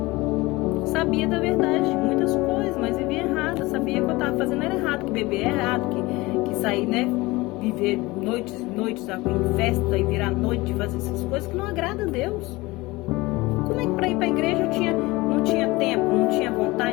Sabia da verdade de muitas coisas, mas vivia errado. Sabia que eu estava fazendo era errado, que beber é errado, que sair, né? Viver noites em festa e virar noite, fazer essas coisas que não agrada a Deus. Como é que para ir para a igreja não tinha tempo, não tinha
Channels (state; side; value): quieter; right; 21.5 dB